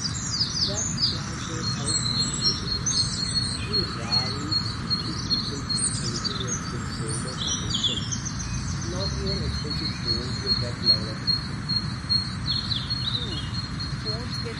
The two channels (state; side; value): identical; both; correlation 1.00